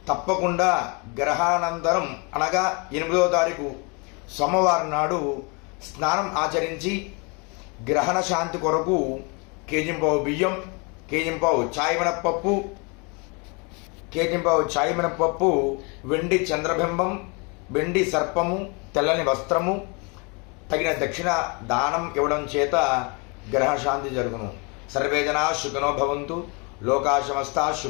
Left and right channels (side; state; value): right; quieter; 31.6 dB